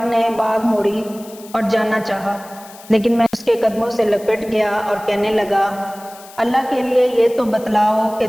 نے باگ موڑی اور جانا چاہا، لیکن میں اس کے قدموں سے لپٹ گیا اور کہنے لگا: اللہ کے لیے یہ تو بتلاؤ کہ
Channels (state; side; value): noise; left; hiss, 20 dB below the sound